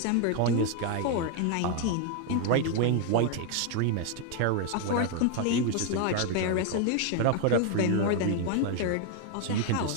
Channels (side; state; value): both; different; correlation 0.01